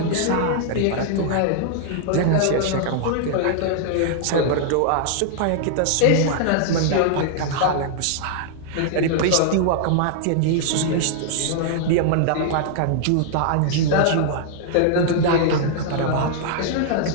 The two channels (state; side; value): different; both; correlation -0.01